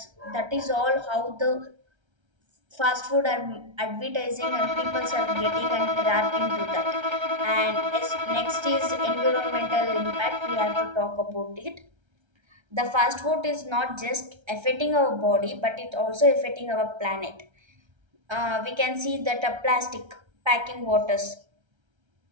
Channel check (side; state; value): left; late; 1.3 ms